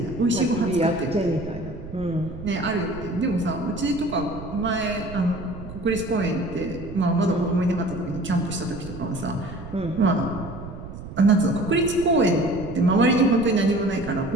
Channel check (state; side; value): noise; right; rumble, 12 dB below the sound